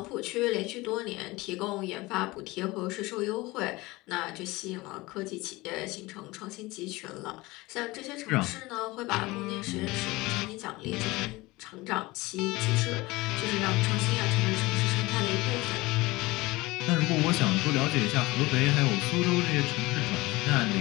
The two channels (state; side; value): quieter; right; 21.2 dB